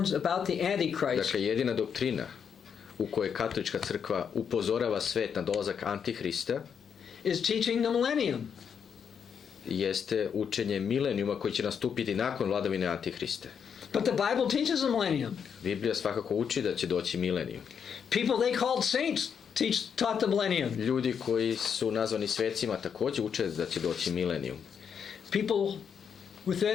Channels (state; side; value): quieter; right; 7.3 dB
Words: about the Antichrist Dakle, jedina doktrina u kojoj katolička crkva upozorava svet na dolazak Antihrista is teaching the millennium. jeste učenje milenijuma koji će nastupiti nakon vladavine Antihrista. But the Bible teaches the millennium. Biblija svakako uči da će doći milenijum. People they called saints taught the millennium. Ljudi koji su nazvani svecima također uče da će doći milenijum. People